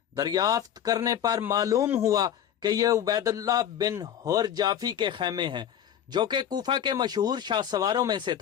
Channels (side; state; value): right; quieter; 9.8 dB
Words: دریافت کرنے پر معلوم ہوا کہ یہ عبید اللہ بن حر جعفی کے خیمے ہیں، جو کہ کوفہ کے مشہور شاہ سواروں میں سے